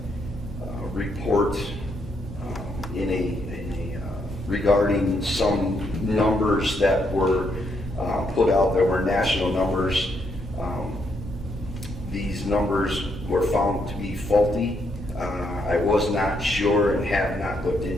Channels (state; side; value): normal; both; correlation 0.76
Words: report regarding some numbers that were put out. There were national numbers. These numbers were found to be faulty. I was not sure and have not looked